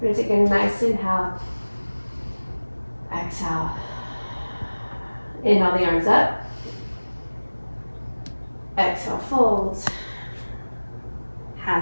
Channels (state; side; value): inverted; both; correlation -1.00